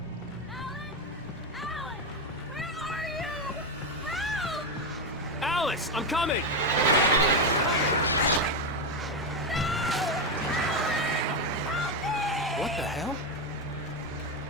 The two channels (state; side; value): normal; both; correlation 0.08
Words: Alan! Where are you? Help! Alice, I'm coming! What the hell?